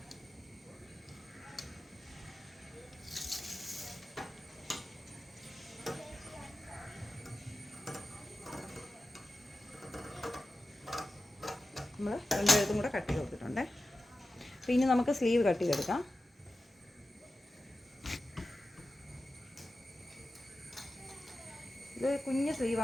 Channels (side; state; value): both; normal; correlation 0.93